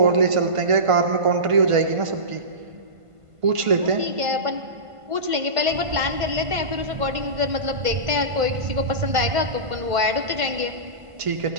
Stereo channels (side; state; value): left; late; 1.5 ms